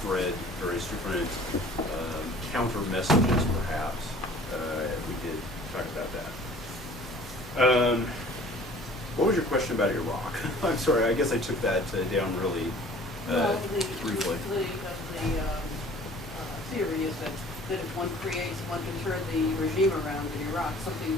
various different counter messages, perhaps. We could talk about that. What was your question about Iraq? I'm sorry, I guess I took that down really briefly. The theory is that if one can turn the regime around in Iraq,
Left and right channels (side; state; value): both; normal; correlation 0.49